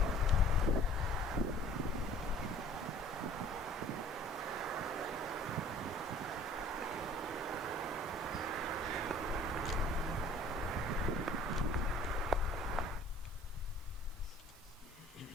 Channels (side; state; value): both; normal; correlation 0.51